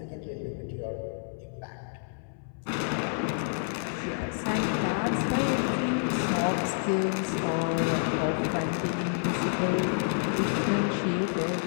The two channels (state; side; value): silent; right; 59 dB below the other